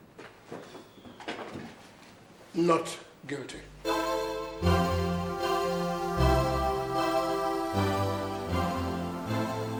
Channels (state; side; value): identical; both; correlation 1.00